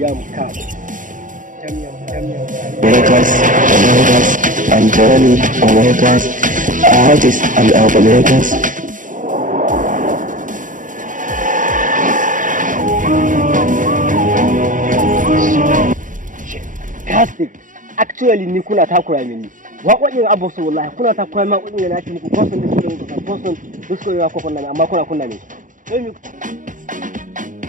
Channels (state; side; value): late; left; 0.38 ms